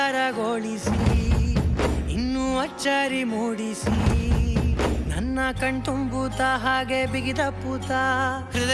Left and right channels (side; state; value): both; identical; correlation 1.00